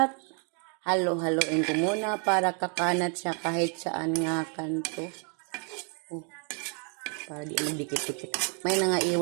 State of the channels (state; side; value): quieter; left; 39.2 dB